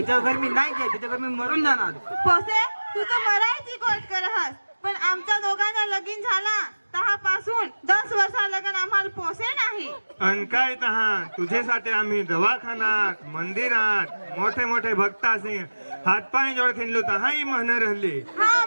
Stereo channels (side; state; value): both; inverted; correlation -1.00